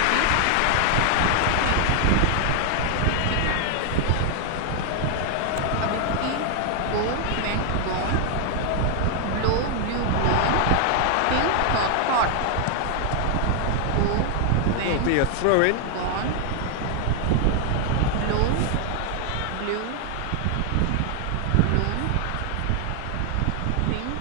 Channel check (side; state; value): both; different; correlation 0.00